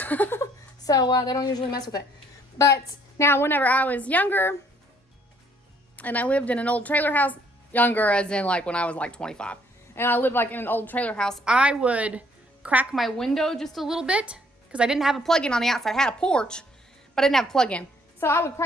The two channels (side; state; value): both; normal; correlation 0.64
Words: So they don't usually mess with it. But now whenever I was younger and I lived in an old trailer house, younger as in like when I was like 25, and I lived like in an old trailer house, I would crack my window just a little bit because I didn't have a plug-in on the outside. I had a porch, but I didn't have a plug-in. So I would